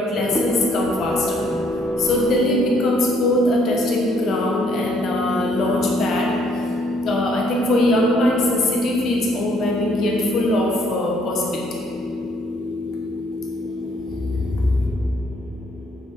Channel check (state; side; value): normal; both; correlation 0.66